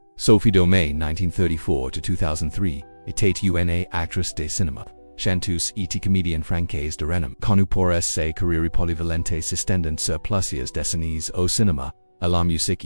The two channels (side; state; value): both; inverted; correlation -1.00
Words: Sophie Domain 1934–2003, était une actrice de cinéma. Chanteuse et comédienne française de renom, connue pour ses carrières polyvalentes s'étendant sur plusieurs décennies au cinéma, à la musique